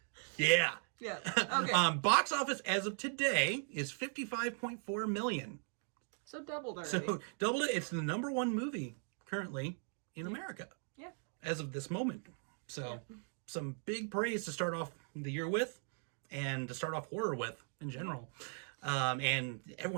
Yeah. Yeah. Okay. Box office as of today is $55.4 million. So doubled already. So doubled it. It's the number 1 movie currently in America. Yeah. As of this moment. So some big praise to start off the year with, and to start off horror with in general. And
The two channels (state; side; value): silent; left; 52 dB below the other